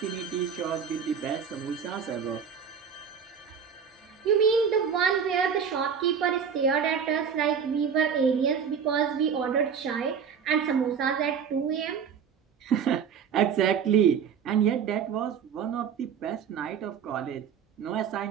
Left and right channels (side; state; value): left; quieter; 7.1 dB